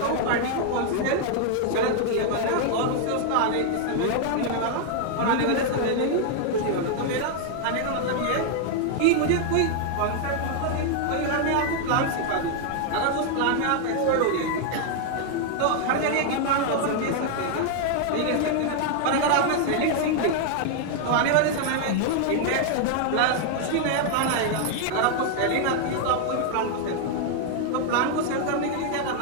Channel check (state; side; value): different; both; correlation 0.00